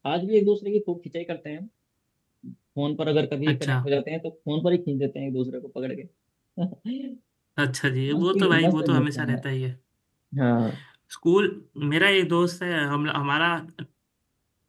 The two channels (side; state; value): both; identical; correlation 1.00